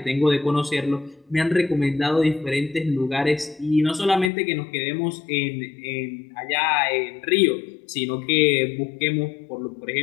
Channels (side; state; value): right; drops out; at 4.3 s